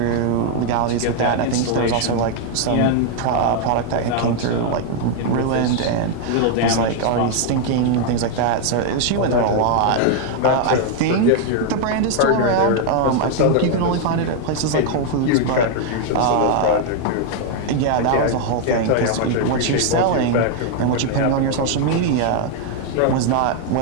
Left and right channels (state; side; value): different; both; correlation 0.00